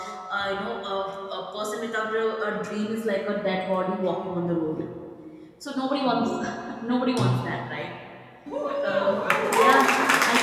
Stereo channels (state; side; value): identical; both; correlation 1.00